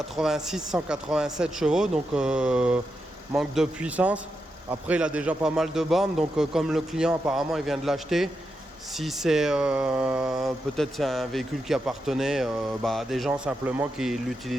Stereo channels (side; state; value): both; normal; correlation 0.86